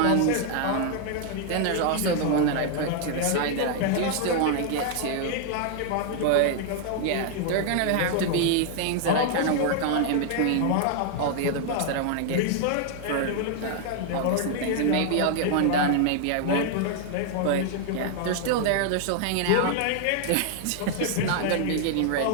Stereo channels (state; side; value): different; both; correlation 0.00